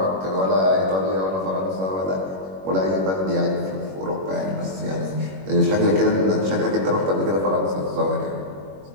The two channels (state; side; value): late; left; 21 ms